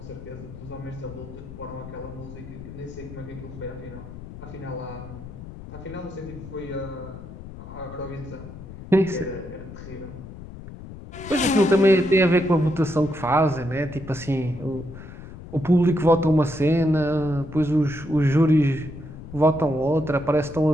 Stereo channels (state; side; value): noise; left; rumble, 13 dB below the sound